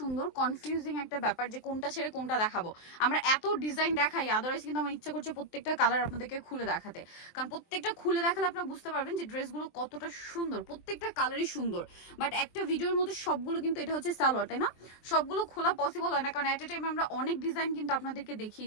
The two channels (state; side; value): late; right; 23 ms